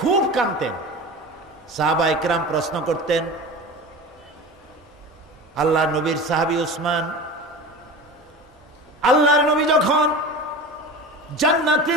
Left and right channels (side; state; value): both; normal; correlation 0.33